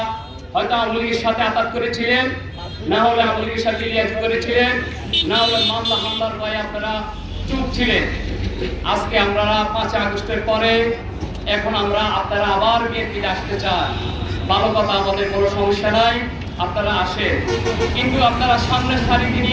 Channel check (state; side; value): identical; both; correlation 1.00